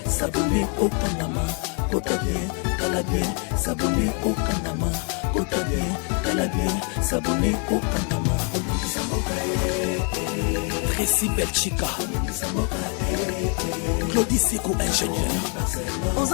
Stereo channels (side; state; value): right; quieter; 38.6 dB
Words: s'abonner au Panama. T'as bien s'abonner au Panama. T'as bien s'abonner au Panama. Tracy Belchica, Claudie Siko ingénieur. On